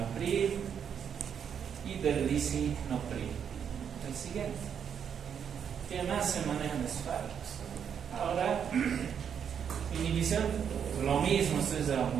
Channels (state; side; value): quieter; left; 7.8 dB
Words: y del lisinopril. El siguiente. ¿Qué más se manejan los fármacos? Ahora, inhibición, lo mismo, esto es